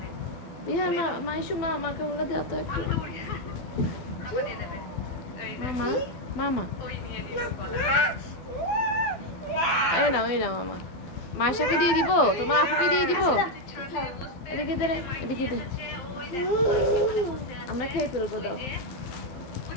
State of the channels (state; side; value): late; right; 12 ms